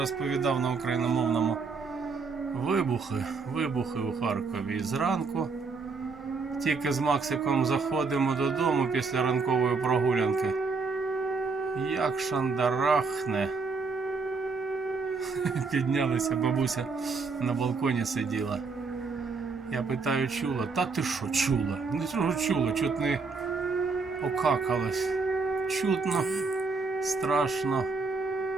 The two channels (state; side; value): quieter; left; 4.5 dB